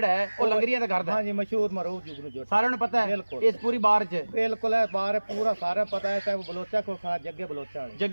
ਹੈ ਉਹ ਲੰਗਰੀਆਂ ਦਾ ਕਰਦਾ ਹੈ। ਹਾਂਜੀ ਮਸ਼ਹੂਰ ਮਰੂਫ ਜੁਗਨੂ ਜੋਟਾ ਸਾਰਿਆਂ ਨੂੰ ਪਤਾ ਹੈ ਬਿਲਕੁਲ। ਇਸ ਪੂਰੀ ਬਾਰ ਚ ਬਿਲकुल है बाहर पूरा सारा पता है चाहे वो बलोचा को खड़ा जग्गे बलोचा वाले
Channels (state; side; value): inverted; both; correlation -1.00